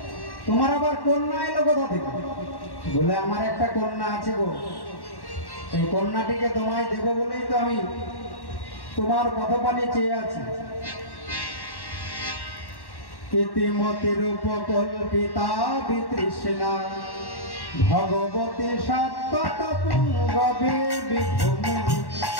তোমার আবার কন্যা এলো কোথা থেকে? বলে, আমার একটা কন্যা আছে গো, এই কন্যাটিকে তোমায় দেব বলেই তো আমি তোমার পথপানে চেয়ে আছি। ইতিমতির উপকল্পিতা বিতৃষ্ণা ভগবতী সত্যত পুঙ্গবে বিভূমি।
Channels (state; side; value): late; right; 1.1 ms